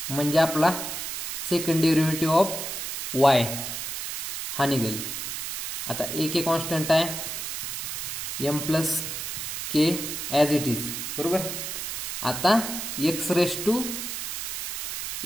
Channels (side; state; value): right; noise; hiss, 5 dB below the sound